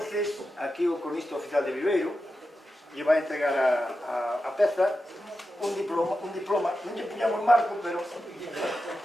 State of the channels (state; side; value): normal; both; correlation 0.90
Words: aquí o cronista oficial de Viveiro lle vai entregar a peza un diploma, non lle puñamos marco, pero